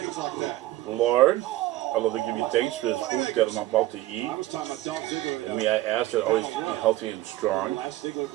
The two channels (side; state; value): left; quieter; 16.2 dB